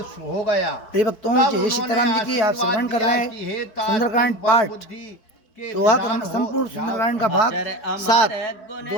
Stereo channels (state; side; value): late; right; 4.6 ms